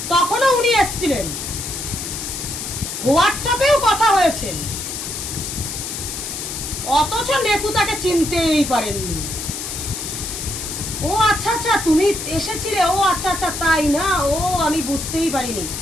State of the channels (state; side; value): noise; left; hiss, 6 dB below the sound